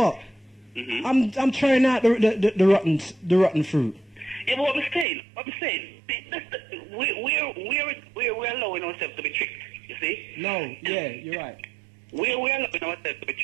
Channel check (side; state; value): left; drops out; at 5.1 s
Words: I'm trying out the rotten fruit. Yeah, but what I'm saying, we're allowing ourselves to be tricked, you see? No, yeah, you're right. We're allowing ourselves to be